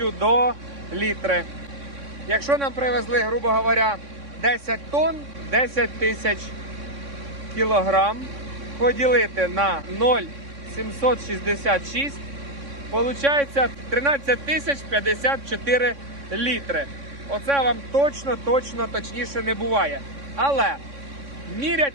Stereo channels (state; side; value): late; left; 3.6 ms